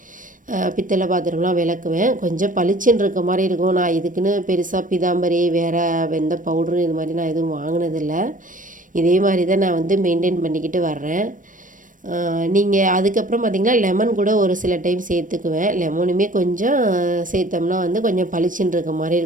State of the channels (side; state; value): left; late; 0.38 ms